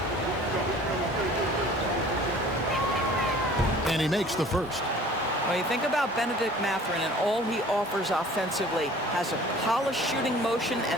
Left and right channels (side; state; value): both; normal; correlation 0.48